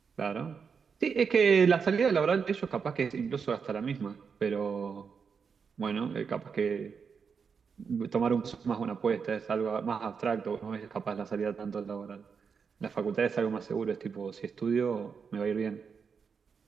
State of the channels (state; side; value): quieter; left; 6.0 dB